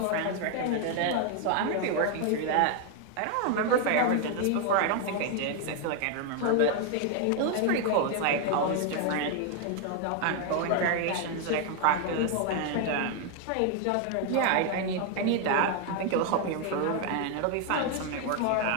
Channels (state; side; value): different; both; correlation 0.00